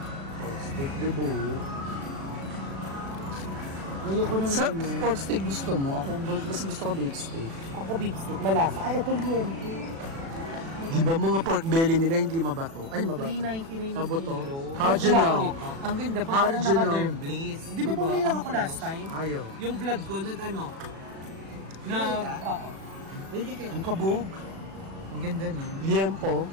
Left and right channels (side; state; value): left; late; 36 ms